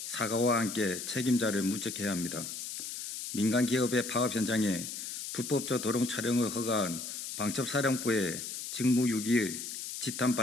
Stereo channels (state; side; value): noise; left; hiss, 7 dB below the sound